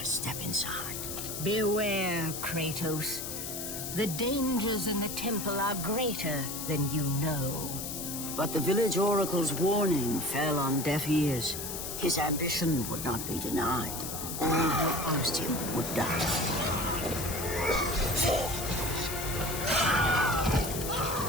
step inside. Beware, Kratos. The dangers in the temple are greater than you know. But the village oracle's warning fell on deaf ears. His ambition would not be denied. All who opposed him would die.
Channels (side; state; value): left; noise; hiss, 6 dB below the sound